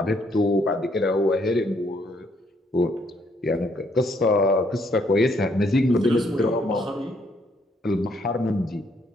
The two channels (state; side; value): normal; both; correlation 0.70